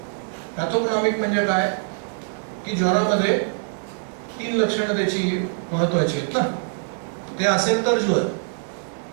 म्हणजे काय की ज्वरामध्ये 3 लक्षणं त्याची महत्वाची आहेत ना. ते असेल तर ज्वर,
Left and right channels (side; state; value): left; silent; 63 dB below the other